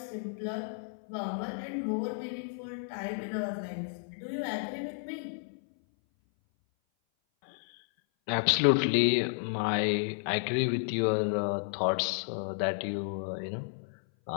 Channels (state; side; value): silent; right; 56 dB below the other